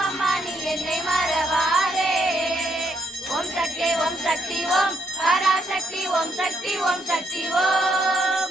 நீ என்னை மறவாதே. ஓம் சக்தி ஓம் சக்தி ஓம் பராசக்தி ஓம் சக்தி ஓம் சக்தி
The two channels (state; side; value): normal; both; correlation 0.74